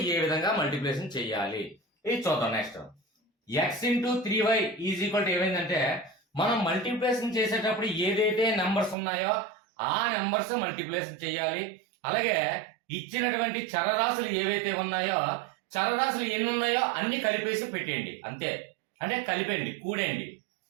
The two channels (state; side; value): drops out; left; at 9.0 s